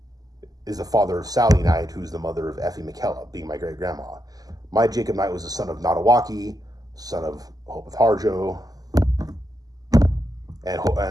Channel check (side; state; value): left; late; 0.18 ms